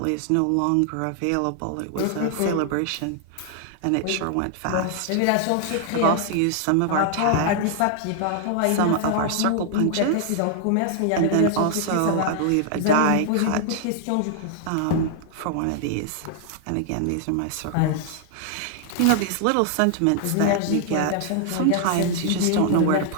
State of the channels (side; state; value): both; different; correlation 0.00